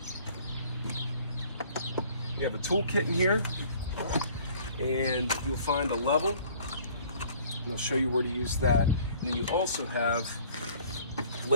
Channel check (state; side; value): inverted; both; correlation -0.53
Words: You have a toolkit in here, and you'll find a level, and I'll show you where to use that. And then you also have